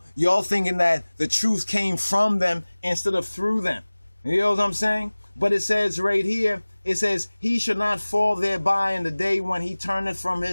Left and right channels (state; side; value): inverted; both; correlation -1.00